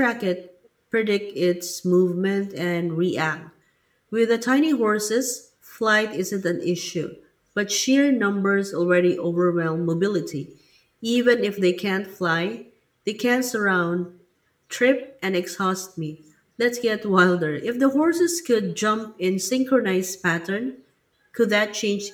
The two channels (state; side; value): identical; both; correlation 1.00